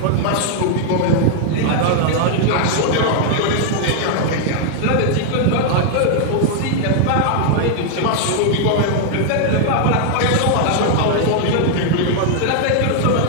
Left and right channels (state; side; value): different; both; correlation 0.00